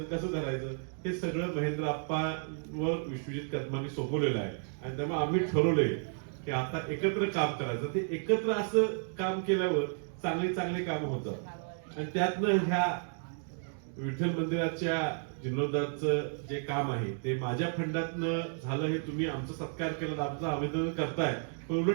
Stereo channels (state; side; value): silent; left; 56 dB below the other